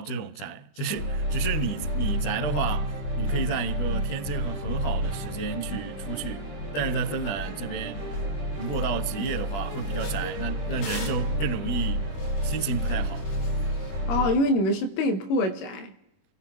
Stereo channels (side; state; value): right; late; 20 ms